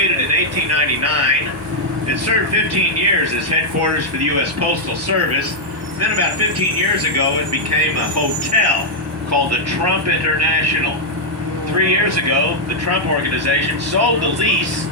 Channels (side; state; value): both; normal; correlation -0.03